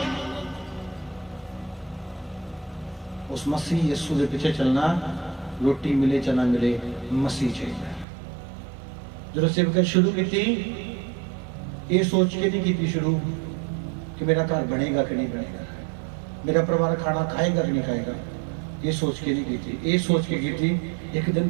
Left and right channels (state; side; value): drops out; left; at 8.1 s